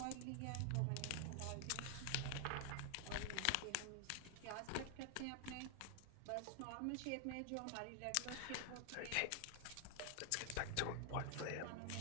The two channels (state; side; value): different; both; correlation 0.00